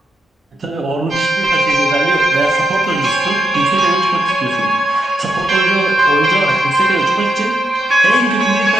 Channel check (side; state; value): both; normal; correlation 0.84